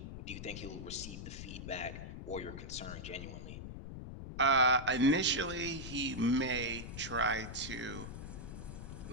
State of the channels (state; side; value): noise; left; rumble, 9 dB below the sound